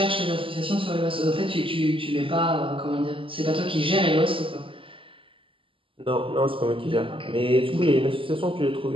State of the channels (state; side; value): late; left; 0.25 ms